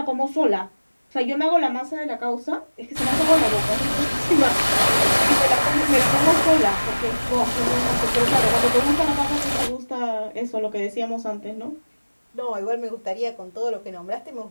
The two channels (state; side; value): inverted; both; correlation -1.00